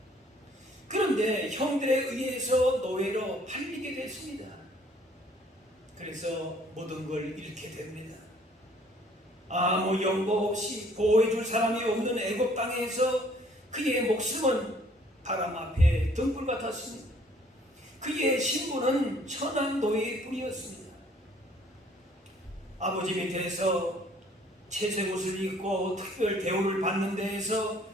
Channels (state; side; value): normal; both; correlation 0.59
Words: 그런데 형들에 의해서 노예로 팔리게 됐습니다. 그래서 모든 걸 잃게 됩니다. 아무 연고 없이 보호해줄 사람이 없는 애굽 땅에서 그의 목숨은 바람 앞에 등불 같았습니다. 그의 신분은 천한 노예일 뿐이었습니다. 아버지 밑에서 채색 옷을 입고 특별 대우를 받는 데에서